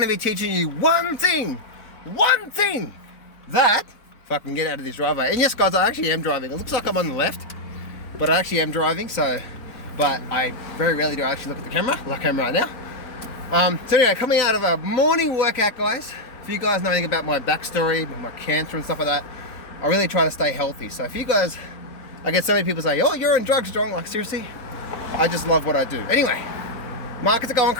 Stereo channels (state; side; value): late; right; 4.1 ms